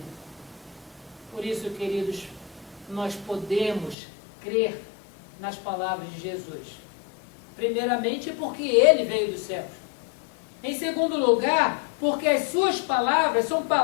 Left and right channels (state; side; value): drops out; right; at 4.0 s